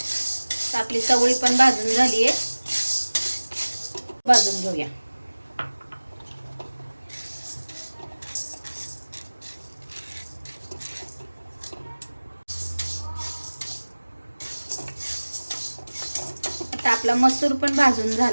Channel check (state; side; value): inverted; both; correlation -1.00